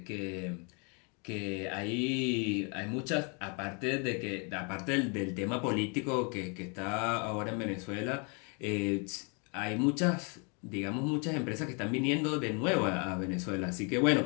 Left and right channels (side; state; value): right; quieter; 34.8 dB